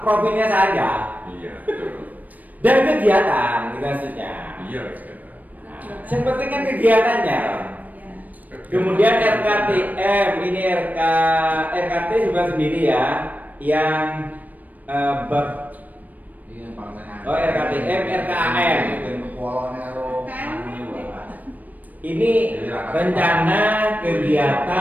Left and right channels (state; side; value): late; left; 0.080 ms